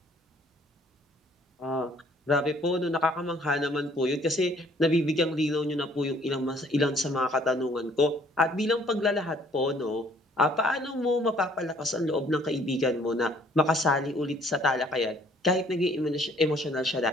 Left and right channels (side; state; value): both; normal; correlation 0.60